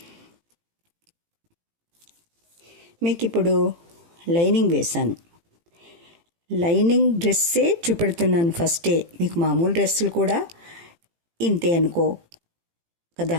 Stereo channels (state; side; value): late; left; 18 ms